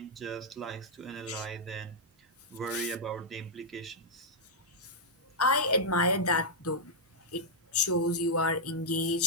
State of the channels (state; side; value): normal; both; correlation -0.07